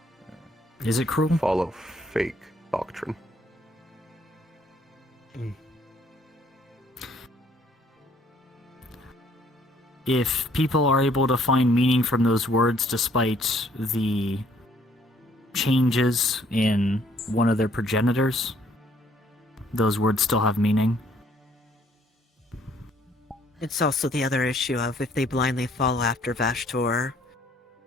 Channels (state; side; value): normal; both; correlation 0.63